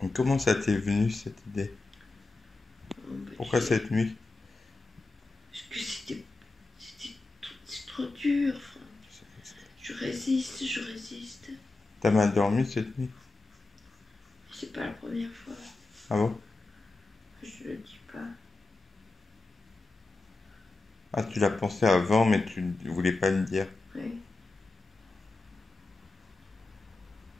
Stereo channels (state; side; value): quieter; right; 3.4 dB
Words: Et comment ça t'est venu cette idée? Pourquoi cette nuit? Parce que c'est trop dur, Franck. Je résiste. T'as mal dormi cette nuit? C'est pas la première fois. Ah bon? Je le dis pas. Ah, tu l'as pensé avant, mais tu ne voulais pas le dire. Oui.